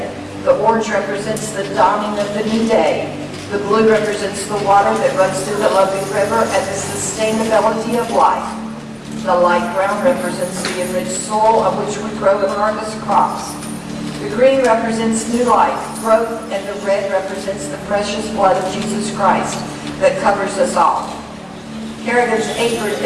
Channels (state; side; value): identical; both; correlation 1.00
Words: The orange represents the dawning of the new day. The blue represents the water that runs through the Lundy River and the sustainability of life. The light brown represents the enriched soil on which we grow and harvest crops. The green represents new life, growth, and the red represents the precious blood of Jesus Christ that covers us all. Kerrigan's apron